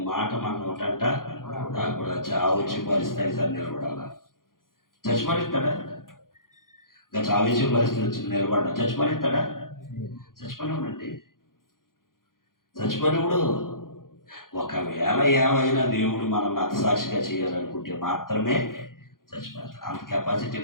మాట మన నోటంట నాకు కూడా చావచ్చి పరిస్థితి సార్ నిలబడాలా. చచ్చిపడిస్తాడా? ఇంకా చావచ్చి పరిస్థితి వచ్చింది, నిలబడ్డా చచ్చిపడిస్తాడా? చచ్చిపోయినాడండి. చచ్చిపోయినప్పుడు ఒకవేళ ఏమైనా దేవుడు మనల్ని అతసాక్షిగా చేయాలనుకుంటే మాత్రమే చచ్చిపోతాడు. అంత కెపాసిటీ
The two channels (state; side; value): late; right; 0.91 ms